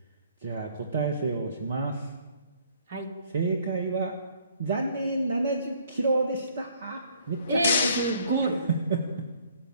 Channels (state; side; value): inverted; both; correlation -0.61